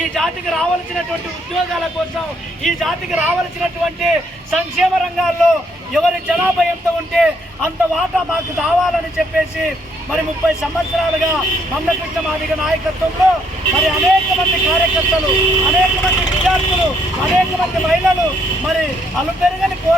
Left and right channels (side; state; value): both; normal; correlation 0.70